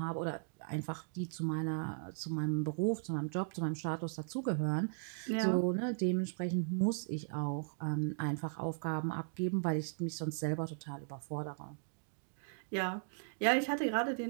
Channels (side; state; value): left; silent; digital silence